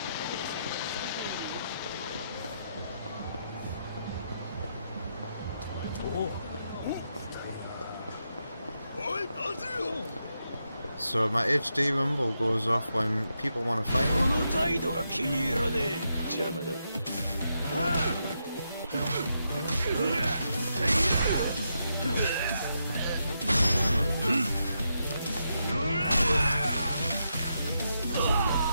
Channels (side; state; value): both; inverted; correlation -0.83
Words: So my HD rumble goes off when people want to fight me.